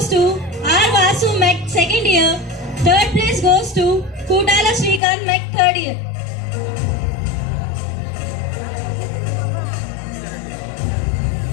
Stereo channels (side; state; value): right; drops out; at 5.0 s